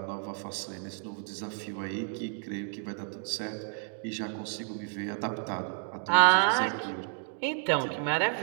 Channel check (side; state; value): left; silent; 57 dB below the other